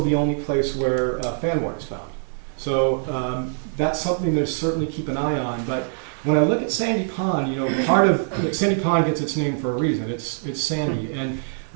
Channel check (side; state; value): left; silent; digital silence